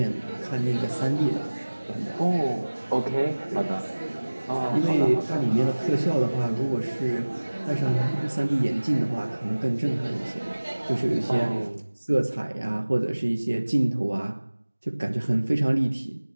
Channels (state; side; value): inverted; both; correlation -1.00